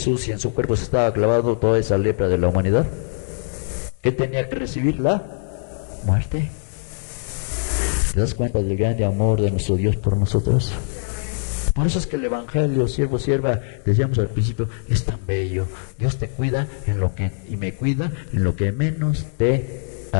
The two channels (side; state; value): right; silent; digital silence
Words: si en su cuerpo se estaba clavando toda esa lepra de la humanidad? ¿Qué tenía que recibir? La muerte. ¿Te das cuenta del grande amor de nuestro Dios por nosotros? Por eso es que el Evangelio, siervo, sierva, decíamos al principio, es tan bello. Dios te cuida en lo que, y me cuida en lo que menos te